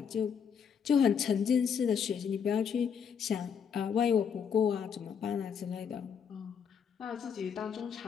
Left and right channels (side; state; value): right; quieter; 7.2 dB